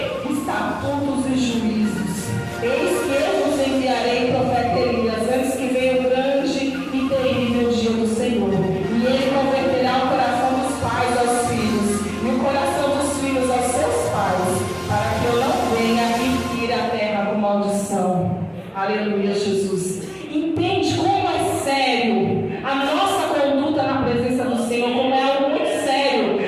estatutos e juízos. Eis que eu vos enviarei profeta Elias, antes que venha o grande e terrível dia do Senhor. E ele converterá o coração dos pais aos filhos, e o coração dos filhos aos seus pais, para que eu não venha e fira a terra com maldição. Aleluia, Jesus. Entende como é sério a nossa conduta na presença do Senhor, como é algo muito sério,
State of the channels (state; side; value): identical; both; correlation 1.00